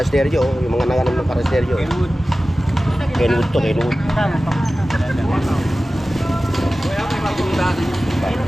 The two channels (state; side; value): normal; both; correlation 0.96